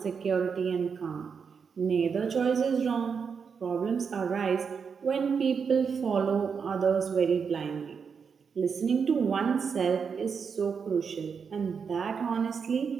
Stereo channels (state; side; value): quieter; left; 6.1 dB